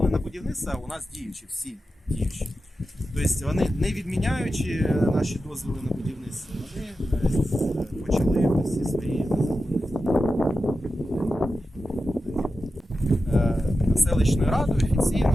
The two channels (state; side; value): normal; both; correlation 0.91